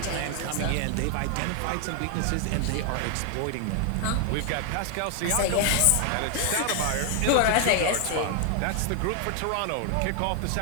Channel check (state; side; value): different; both; correlation 0.00